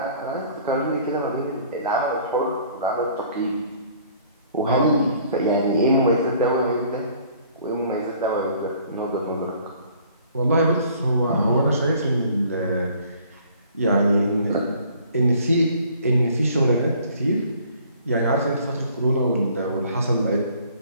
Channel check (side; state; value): both; inverted; correlation -0.56